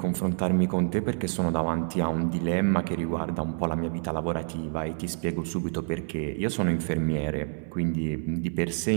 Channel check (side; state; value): left; silent; 59 dB below the other